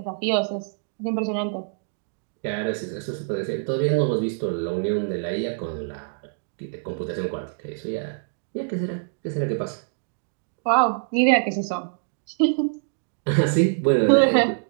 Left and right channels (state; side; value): silent; left; digital silence